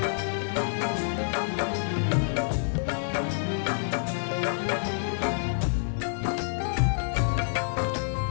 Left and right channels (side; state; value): right; silent; digital silence